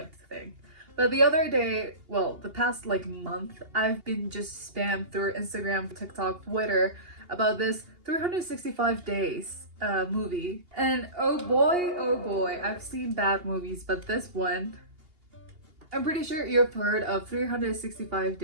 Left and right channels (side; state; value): left; late; 2.8 ms